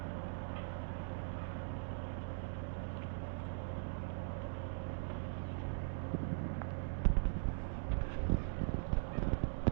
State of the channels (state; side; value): silent; left; digital silence